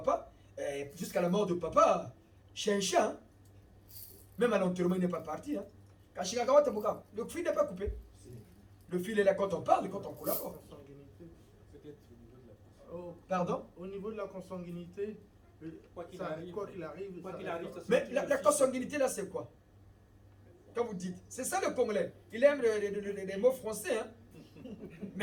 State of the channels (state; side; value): identical; both; correlation 1.00